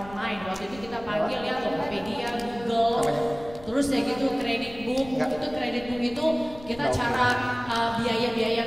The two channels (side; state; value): left; noise; rumble, 18 dB below the sound